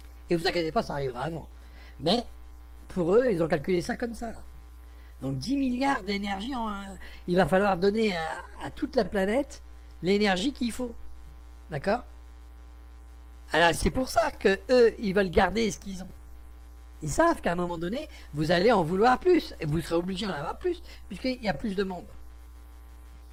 Et vous inquiétez pas, ça arrivera avant. Mais, pour eux, ils ont calculé ça comme ça. Donc 10 milliards d'énergie, il va falloir donner à toute la planète l'énergie qu'il faut. D'accord? Alors c'est pour ça que eux, ils veulent garder ce qu'ils ont. Ils savent qu'à un moment donné, vous allez en vouloir plus, et vous serez obligé d'en avoir plus, puisqu'il y a plus de monde.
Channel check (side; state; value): both; identical; correlation 1.00